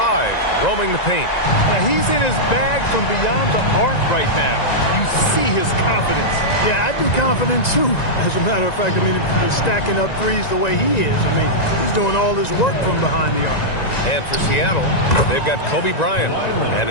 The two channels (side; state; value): right; late; 1.9 ms